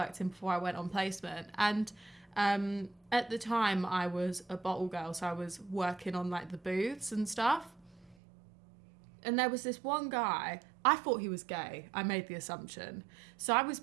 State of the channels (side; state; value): left; drops out; at 8.2 s